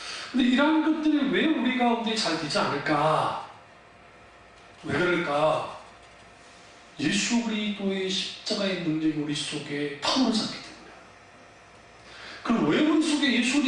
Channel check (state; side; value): identical; both; correlation 1.00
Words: 근데 이러한 것들이 왜 우리 가운데 잘 되지 않을까? 왜 그럴까? 예수 그리스도의 십자가의 능력이 우리 속에 타오르지 않기 때문에. 그럼 왜 우리 속에 예수